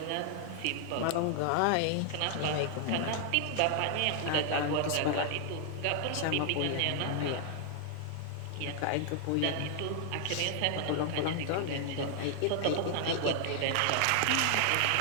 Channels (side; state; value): both; different; correlation 0.00